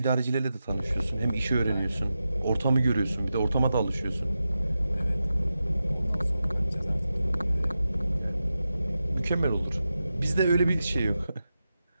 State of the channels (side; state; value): both; inverted; correlation -0.91